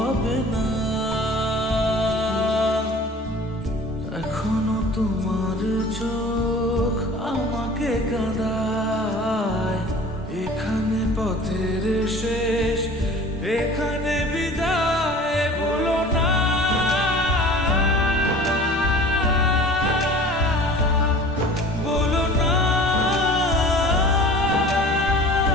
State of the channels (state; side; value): normal; both; correlation 0.43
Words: না। এখনো তোমার চোখ আমাকে কাঁদায়, এখানে পথের শেষ, এখানে বিদায় বলো না। বলো না,